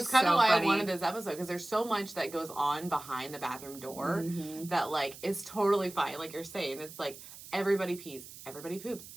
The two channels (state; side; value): noise; right; hiss, 16 dB below the sound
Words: kind of why I wanted this episode, because there's so much that goes on behind the bathroom door that like is totally fine. Like you're saying, it's like everybody pees, everybody poops.